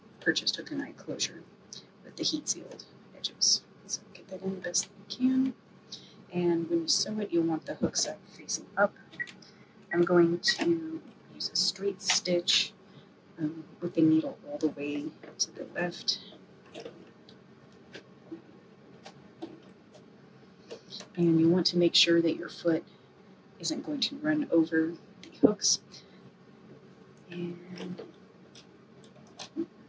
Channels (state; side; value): identical; both; correlation 1.00